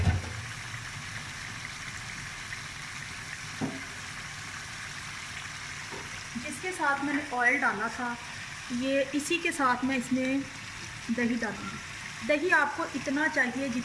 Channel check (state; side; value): identical; both; correlation 1.00